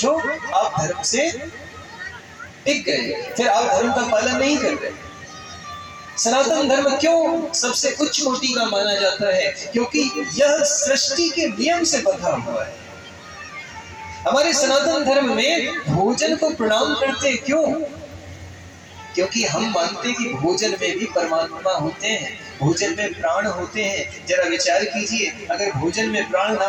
आप धर्म से टिक गए, फिर आप धर्म का पालन नहीं कर रहे। सनातन धर्म क्यों सबसे उच्च कोटि का माना जाता है? क्योंकि यह सृष्टि के नियम से बंधा हुआ है। हमारे सनातन धर्म में भोजन को प्रणाम करते क्यों? क्योंकि हम मानते हैं कि भोजन में भी परमात्मा होते हैं, भोजन में प्राण होते हैं। जरा विचार कीजिए, अगर भोजन में प्राण ना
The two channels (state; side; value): identical; both; correlation 1.00